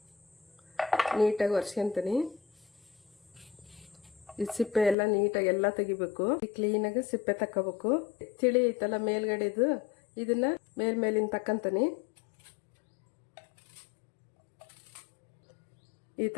ನೀಟಾಗಿ ಒರೆಸ್ಕೊತೀನಿ. ಈ ಸಿಪ್ಪೆ ಎಲ್ಲ ನೀಟಾಗಿ ಎಲ್ಲ ತೆಗಿಬೇಕು. ಕ್ಲೀನಾಗಿ ಸಿಪ್ಪೆ ತಕ್ಕೋಬೇಕು. ತಿಳಿ ಐತಲ್ಲ ಮೇಲ್ಗಡೆದು, ಇದನ್ನ ಮೇಲಿನ ತಕ್ಕಂತೀನಿ. ಈ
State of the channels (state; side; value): drops out; right; at 5.0 s